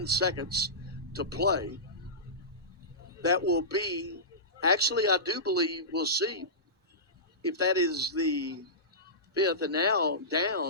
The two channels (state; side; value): normal; both; correlation -0.19